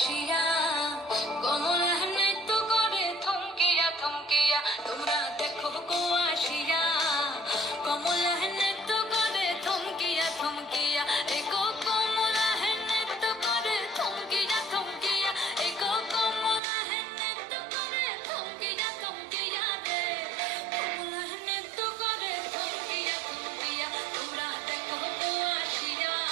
কমলা নৃত্য করে থমকিয়া থমকিয়া। তোমরা দেখো গো আসিয়া কমলা নৃত্য করে থমকিয়া থমকিয়া। এগো কমলা নৃত্য করে থমকিয়া থমকিয়া। এগো কমলা নৃত্য করে থমকিয়া থমকিয়া রে। কমলা নৃত্য করে থমকিয়া থমকিয়া। তোমরা দেখো গো আসিয়া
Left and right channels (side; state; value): left; drops out; at 16.6 s